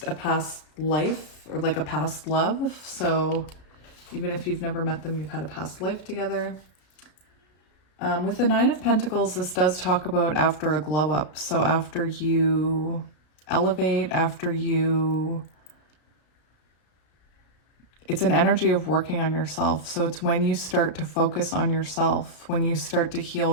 a past life, or like a past love. So even if you've never met them, you've had a past life together. With the Nine of Pentacles, this does talk about after a glow up. So after you elevate, it's an energy of working on yourself. So it's when you start to focus on yourself, when you start to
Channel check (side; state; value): right; late; 33 ms